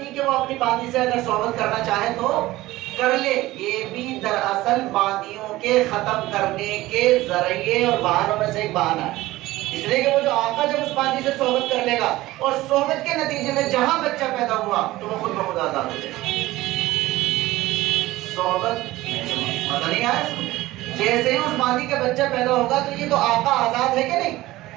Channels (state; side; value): quieter; left; 17.6 dB